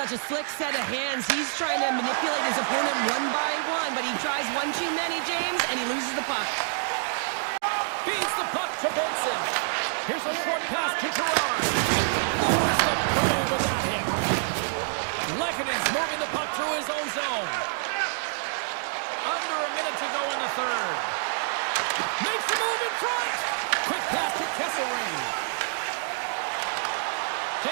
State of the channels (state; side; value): silent; left; digital silence